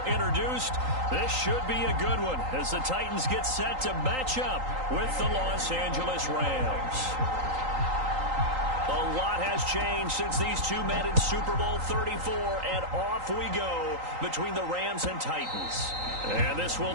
introduced. This should be a good one as the Titans get set to match up with the Los Angeles Rams. A lot has changed since these two met in Super Bowl 34, and off we go between the Rams and Titans. And this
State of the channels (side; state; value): left; late; 3.8 ms